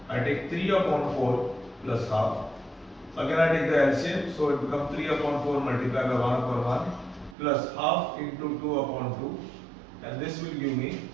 I take 3 upon 4 plus half. Again I take the LCM, so it becomes 3 upon 4 multiplied by 1 upon 1 plus half into 2 upon 2, and this will give me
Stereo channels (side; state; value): left; drops out; at 7.4 s